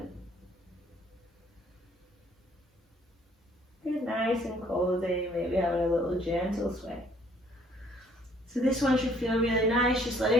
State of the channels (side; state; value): both; normal; correlation 0.61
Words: Get nice and cozy, maybe having a little gentle sway. So this one should feel really nice, just